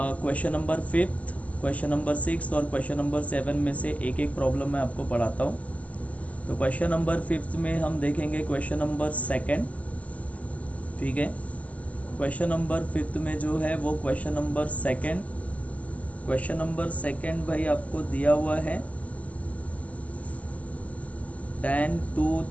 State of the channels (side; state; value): right; late; 0.070 ms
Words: number 5th, question number 6 और क्वेश्चन नंबर 7 में से एक एक प्रॉब्लम मैं आपको पढ़ाता हूँ। तो क्वेश्चन नंबर 5th में हम देखेंगे क्वेश्चन नंबर 2। ठीक है, क्वेश्चन नंबर 5th में जो है वो क्वेश्चन नंबर 2। क्वेश्चन नंबर 2 भाई आपको दिया हुआ है tan 2